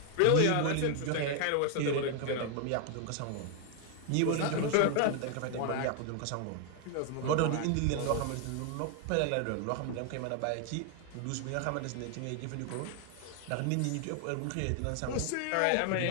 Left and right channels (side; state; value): both; different; correlation 0.00